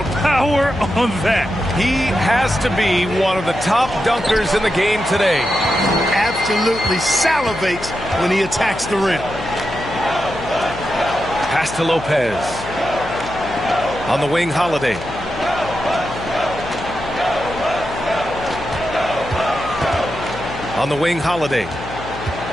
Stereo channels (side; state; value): left; noise; hum, 12 dB below the sound